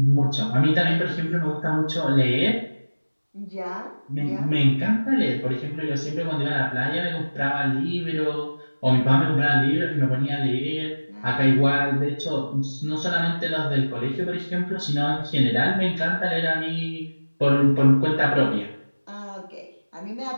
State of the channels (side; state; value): both; inverted; correlation -1.00